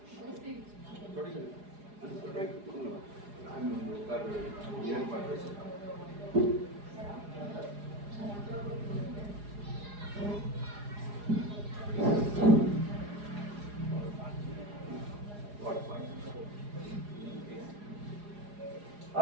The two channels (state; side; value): late; left; 4.8 ms